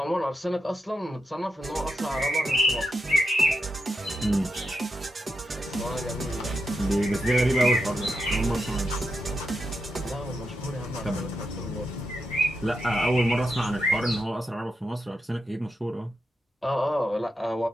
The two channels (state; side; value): normal; both; correlation 0.85